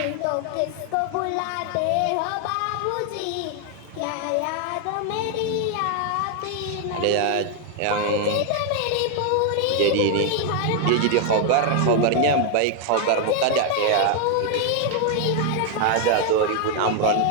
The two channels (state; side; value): different; both; correlation 0.00